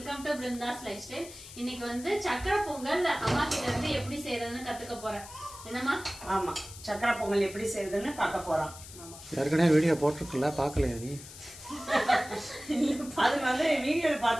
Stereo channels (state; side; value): noise; left; hiss, 15 dB below the sound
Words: to Brinda's Lifestyle. இன்னைக்கு வந்து சக்கரை பொங்கல் அம்மா கிட்ட இருந்து எப்படி செய்யறதுன்னு கத்துக்க போறேன். என்னம்மா? ஆமா, சக்கரை பொங்கல் எப்படி செய்யறதுன்னு பார்க்க போறோம். ஏற்கனவே வீடியோ போட்டுருக்கல, பார்க்கலையா நீ? அது வந்து வீடியோல